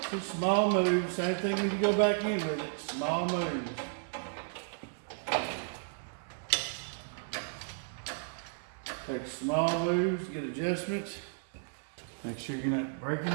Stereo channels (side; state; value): left; silent; digital silence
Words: Two small moves, same thing when you go back in with it, small moves. Take small moves, get adjustments. Make sure you're not breaking